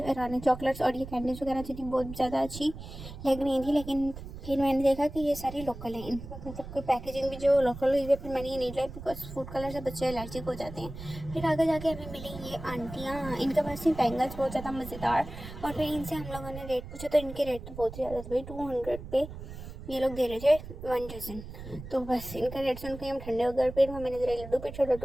ईरानी चॉकलेट्स और ये कैंडीज वगैरह थी बहुत ज़्यादा अच्छी लग रही थी, लेकिन फिर मैंने देखा कि ये सारी लोकल हैं, इनका मतलब कोई पैकेजिंग भी जो लोकल हुई है। फिर मैंने ये नहीं लाई, बिकॉज फूड कलर से बच्चे एलर्जिक हो जाते हैं। फिर आगे जाके हमें मिली ये आंटियाँ, इनके पास थी बैंगल्स बहुत ज़्यादा मज़ेदार। और फिर इनसे हम लोगों ने रेट पूछा, तो इनके रेट तो बहुत ही ज़्यादा थे भाई। 200 पे ये लोग दे रहे थे 1 डज़न। तो बस इनका रेट सुन के हम ठंडे हो गए। फिर मैंने जरा लड्डू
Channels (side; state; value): right; noise; rumble, 12 dB below the sound